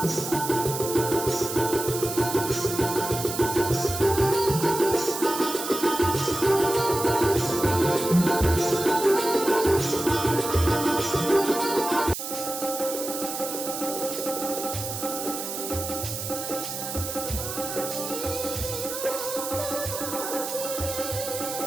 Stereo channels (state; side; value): noise; right; hiss, 6 dB below the sound